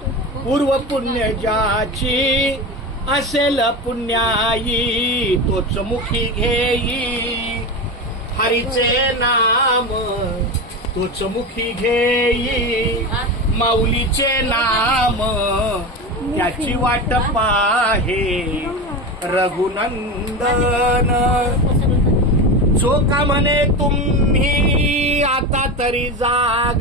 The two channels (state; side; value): normal; both; correlation 0.23